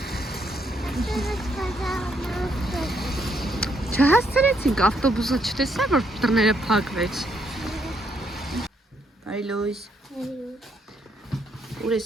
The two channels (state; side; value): normal; both; correlation 0.74